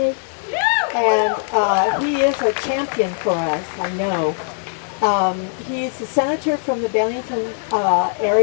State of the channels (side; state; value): right; silent; 66 dB below the other